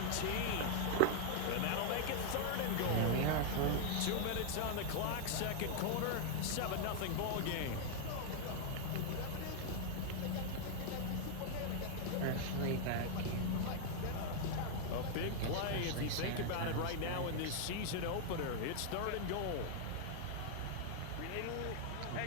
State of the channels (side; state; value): both; different; correlation 0.00